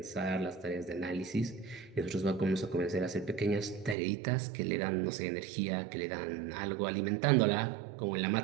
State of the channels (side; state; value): left; drops out; at 4.0 s